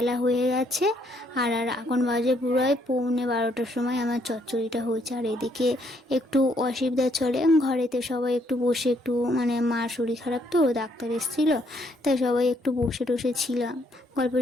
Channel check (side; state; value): both; normal; correlation 0.70